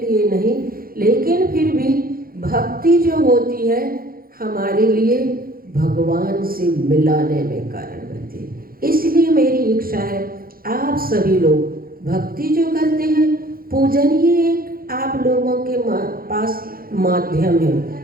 नहीं, लेकिन फिर भी भक्ति जो होती है हमारे लिए भगवान से मिलाने में कारण बनती है। इसलिए मेरी इच्छा है आप सभी लोग भक्ति जो करते हैं, पूजन ही एक आप लोगों के पास माध्यम है।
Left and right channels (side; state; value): left; late; 0.42 ms